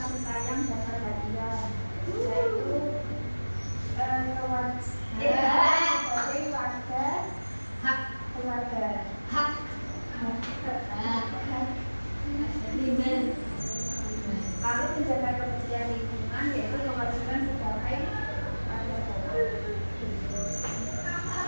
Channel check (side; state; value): both; inverted; correlation -1.00